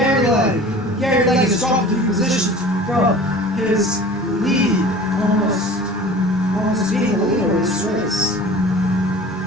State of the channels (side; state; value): both; normal; correlation 0.42